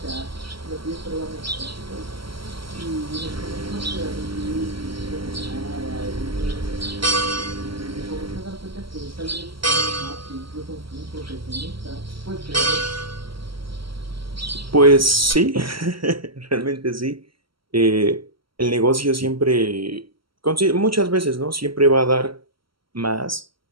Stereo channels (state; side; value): late; left; 0.74 ms